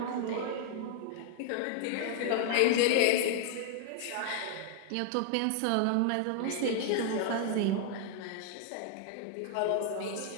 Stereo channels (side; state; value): both; different; correlation 0.00